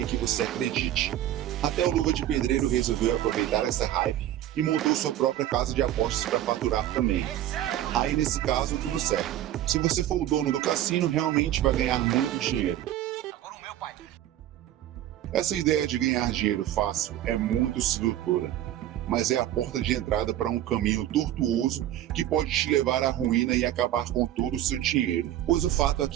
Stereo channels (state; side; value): quieter; left; 12.6 dB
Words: que você acredite. Até o Luva de Pedreiro resolveu aproveitar essa hype e montou sua própria casa de apostas para faturar também. Aí nesse caso, tudo certo. Se você for o dono do cassino, realmente vai ganhar muito dinheiro. Essa ideia de ganhar dinheiro fácil é muito sedutora, mas é a porta de entrada para um caminho tortuoso que pode te levar à ruína e acabar com todo o seu dinheiro. Pois o fato é